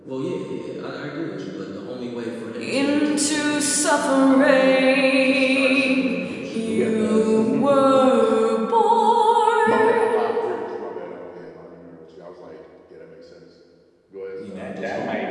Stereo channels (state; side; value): identical; both; correlation 1.00